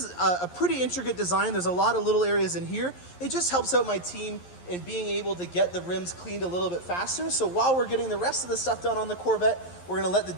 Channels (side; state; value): right; late; 11 ms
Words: a pretty intricate design. There's a lot of little areas in here. It just helps out my team in being able to get the rims cleaned a little bit faster. So while we're getting the rest of the stuff done on the Corvette, we're going to let the